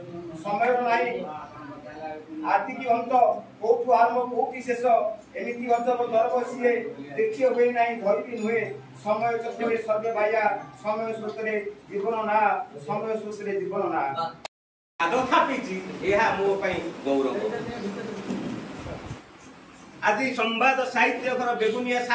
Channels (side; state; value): both; identical; correlation 1.00